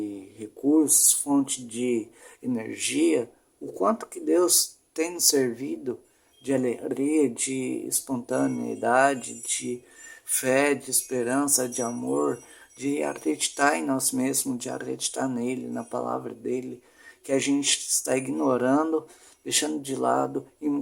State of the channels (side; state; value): both; identical; correlation 1.00